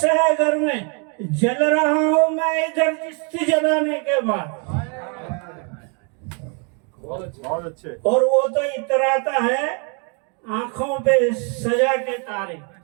है घर में, जल रहा हूं मैं इधर चिश्ती जलाने के बाद। बहुत अच्छे। और वो तो इतराता है आंखों पे सजा के तारे।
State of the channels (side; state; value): left; quieter; 37.0 dB